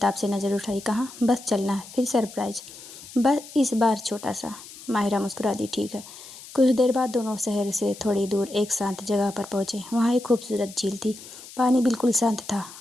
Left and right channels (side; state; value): left; noise; hiss, 16 dB below the sound